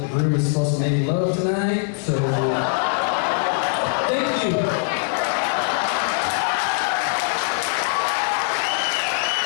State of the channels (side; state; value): right; silent; digital silence